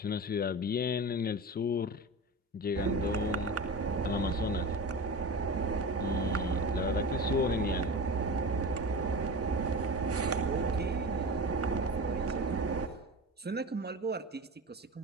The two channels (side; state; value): both; normal; correlation 0.29